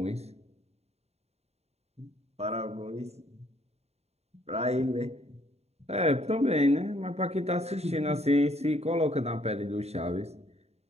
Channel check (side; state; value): left; late; 0.31 ms